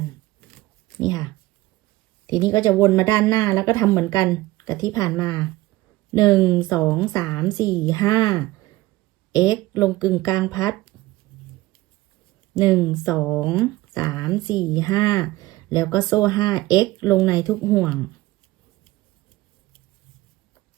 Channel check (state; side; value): quieter; left; 18.1 dB